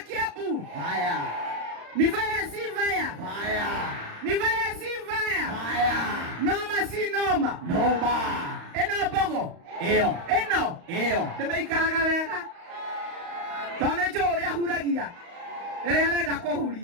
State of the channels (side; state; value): left; late; 35 ms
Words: Haya ni vaya si vaya, ni vaya si vaya, noma si noma, eno bogo eno nimeikaraga wega tone jore ahuragia ere arenda